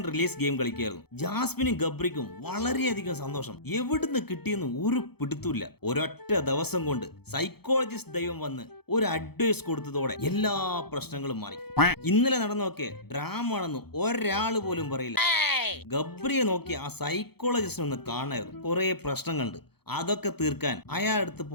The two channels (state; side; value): late; right; 0.97 ms